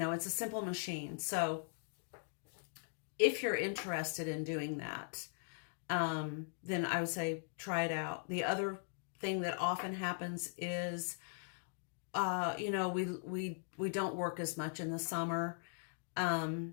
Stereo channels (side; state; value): right; silent; digital silence